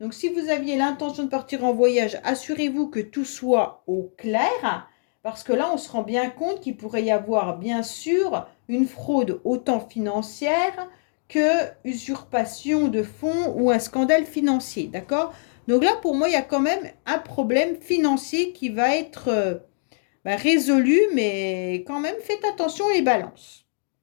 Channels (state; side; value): silent; right; digital silence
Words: si vous aviez l'intention de partir en voyage, assurez-vous que tout soit au clair. Parce que là, on se rend bien compte qu'il pourrait y avoir, bien sûr, une fraude autant financière que usurpation de fonds ou un scandale financier, d'accord? Donc là, pour moi, il y a quand même un problème financier qui va être résolu, mais quand même, faites attention les balances.